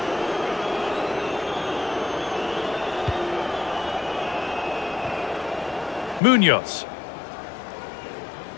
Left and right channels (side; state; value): right; drops out; at 6.2 s